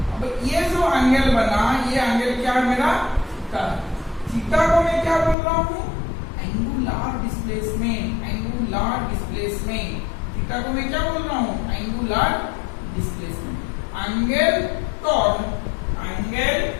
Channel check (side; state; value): right; drops out; at 5.4 s